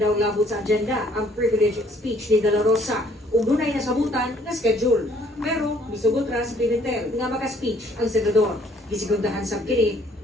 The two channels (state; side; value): normal; both; correlation 0.61